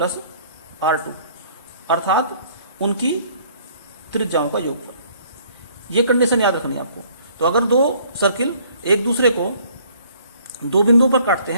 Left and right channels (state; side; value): inverted; both; correlation -0.59